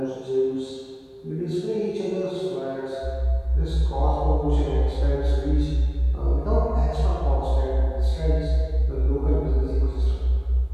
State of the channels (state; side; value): identical; both; correlation 1.00